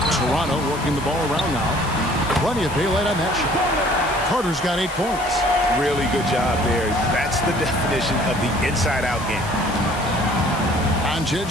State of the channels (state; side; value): noise; left; hiss, 15 dB below the sound